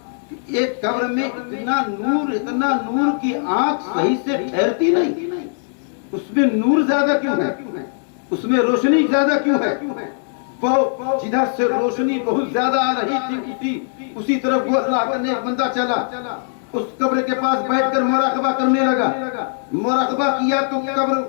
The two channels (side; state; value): right; silent; digital silence